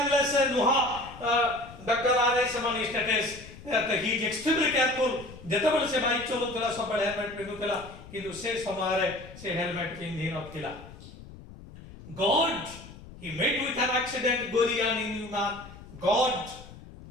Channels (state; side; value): noise; left; rumble, 17 dB below the sound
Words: नुहा डॉक्टर आरे समानी states that he is extremely careful. जेतबेले से बाइक चलउतेला सब हेलमेट पिंधुतेला किंतु से समय रे से हेलमेट पिंधि नथिला. God, he met with an accident Gorian in human. God